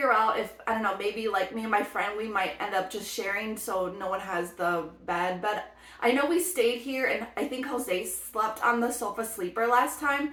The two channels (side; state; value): both; identical; correlation 1.00